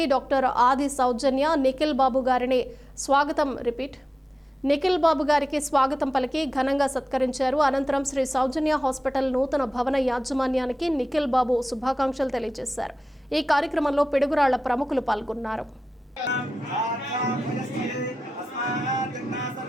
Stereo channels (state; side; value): normal; both; correlation 0.94